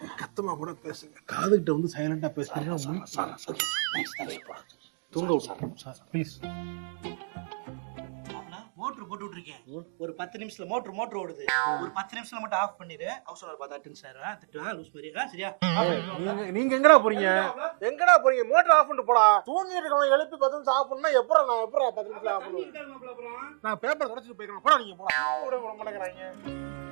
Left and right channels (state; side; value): silent; left; 59 dB below the other